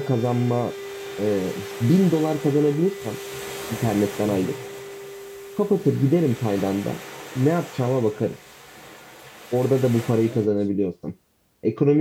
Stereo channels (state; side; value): identical; both; correlation 1.00